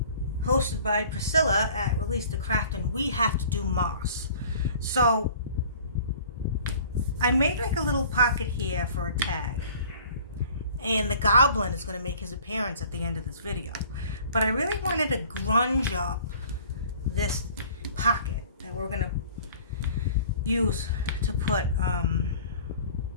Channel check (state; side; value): inverted; both; correlation -0.49